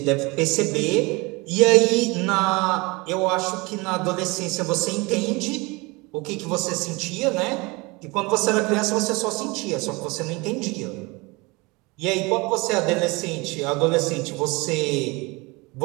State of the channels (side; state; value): left; quieter; 25.3 dB